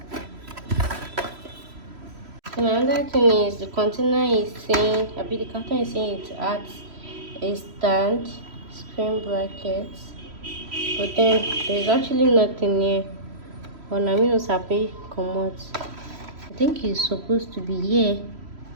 Another thing is the container is saying, the carton is saying it adds a stand, screen brackets, but then there's actually nothing here. But I mean, it's happy come out. I think it's supposed to be here,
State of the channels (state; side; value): late; left; 3.1 ms